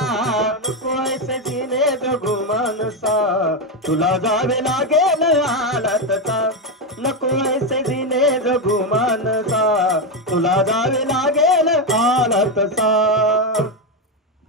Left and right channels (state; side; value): normal; both; correlation 0.08